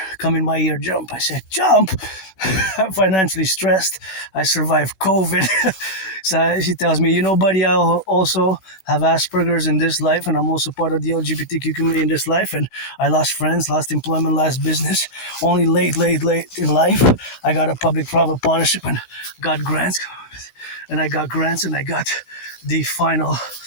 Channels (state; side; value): late; right; 16 ms